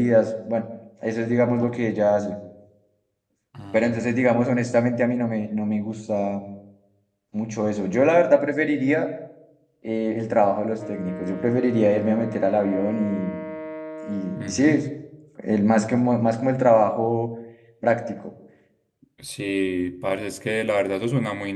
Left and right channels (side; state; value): both; identical; correlation 1.00